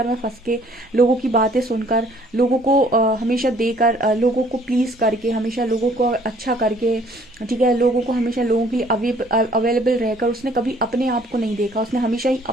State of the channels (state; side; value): normal; both; correlation 0.59